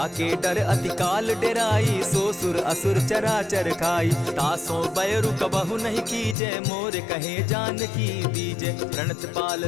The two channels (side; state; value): right; drops out; at 6.4 s